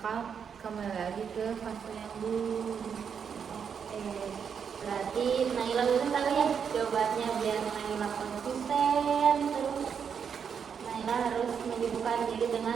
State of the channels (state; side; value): quieter; left; 7.0 dB